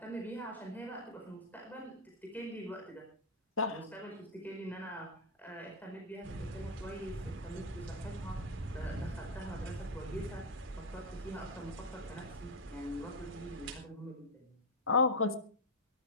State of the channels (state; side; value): normal; both; correlation 0.02